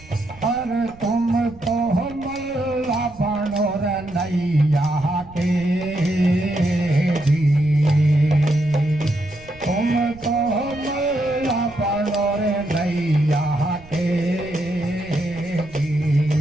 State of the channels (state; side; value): noise; right; rumble, 21 dB below the sound